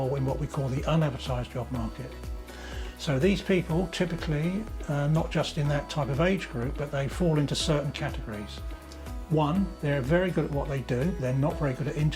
in what we call the unadvertised job market. So these people typically, not just in that type of age group, but they fall into certain categories. One, they're very good at what they do. They're not very good at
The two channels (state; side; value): identical; both; correlation 1.00